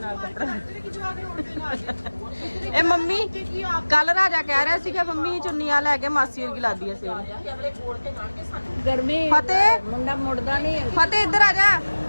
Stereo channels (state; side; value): inverted; both; correlation -1.00